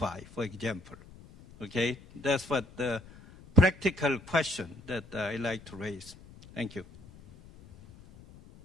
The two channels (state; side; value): noise; left; rumble, 21 dB below the sound